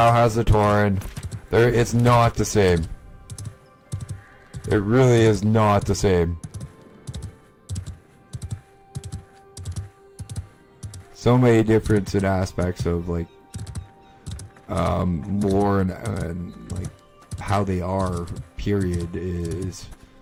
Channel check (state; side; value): identical; both; correlation 1.00